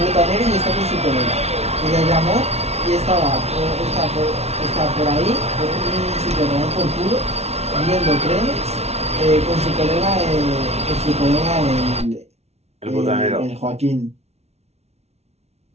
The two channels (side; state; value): left; late; 0.31 ms